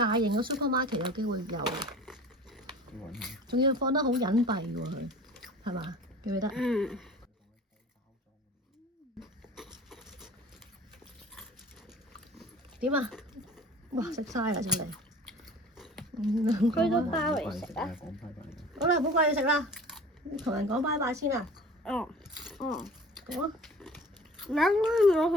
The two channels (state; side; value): normal; both; correlation 0.43